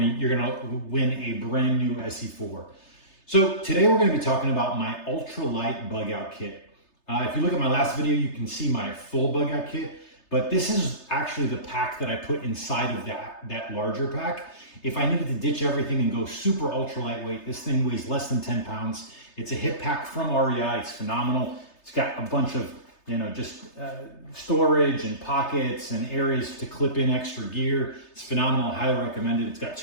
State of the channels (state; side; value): late; right; 3.3 ms